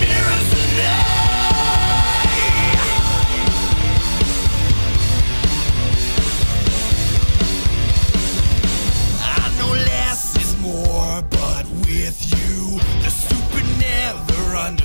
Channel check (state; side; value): inverted; both; correlation -1.00